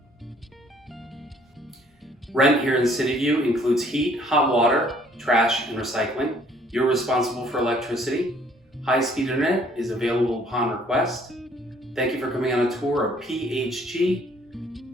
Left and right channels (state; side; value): normal; both; correlation 0.60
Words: Rent here in Cityview includes heat, hot water, trash, and recycling. You're responsible for electricity. High-speed internet is available upon request. Thank you for coming on a tour of